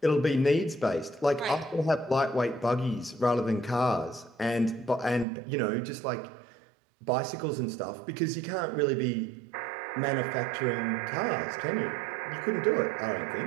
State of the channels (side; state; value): left; drops out; at 5.2 s